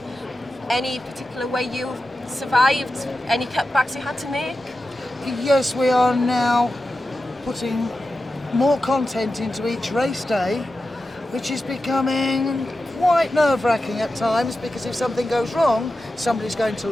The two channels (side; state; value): both; normal; correlation 0.92